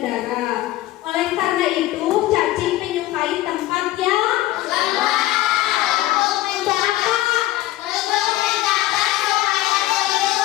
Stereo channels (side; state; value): right; quieter; 16.2 dB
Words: udara. Oleh karena itu, cacing menyukai tempat yang lembab. Untuk apa?